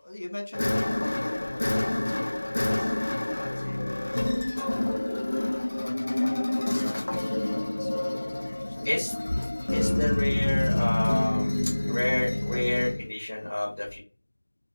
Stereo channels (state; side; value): inverted; both; correlation -1.00